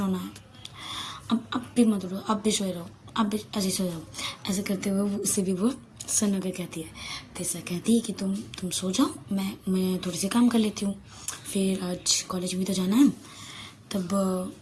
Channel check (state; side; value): identical; both; correlation 1.00